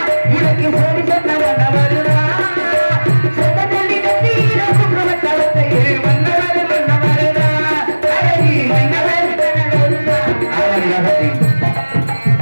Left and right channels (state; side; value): inverted; both; correlation -1.00